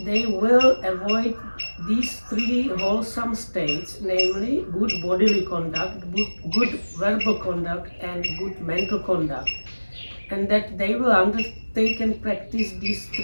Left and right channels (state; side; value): inverted; both; correlation -1.00